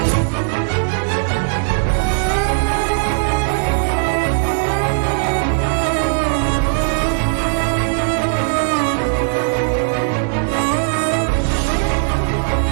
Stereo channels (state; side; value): silent; left; digital silence